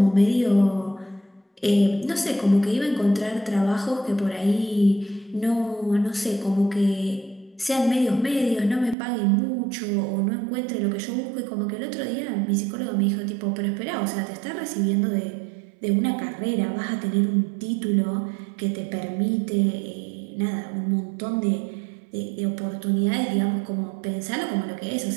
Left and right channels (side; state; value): left; drops out; at 9.0 s